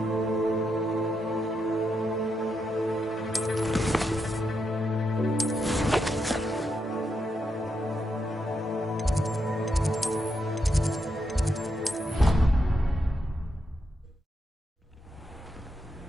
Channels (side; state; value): both; normal; correlation 0.83